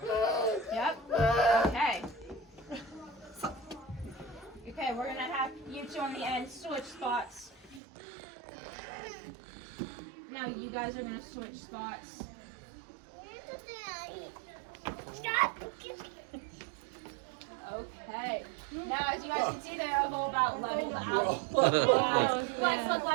Yep. Okay. Okay, we're gonna have you two on the end switch spots. Now you guys are gonna switch spots. Okay. Now, as you guys can see, they're all about leveled out. Yeah. Let's look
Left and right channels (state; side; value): drops out; left; at 7.8 s